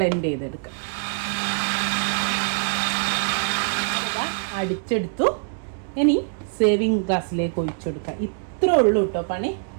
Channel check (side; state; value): left; silent; digital silence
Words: ചെയ്തെടുക്കാം. അടിച്ചെടുത്തു. ഇനി സേവിങ് ഗ്ലാസ്സിലേക്ക് ഒഴിച്ചു കൊടുക്കാം. ഇത്രേ ഉള്ളൂ കേട്ടോ പണി.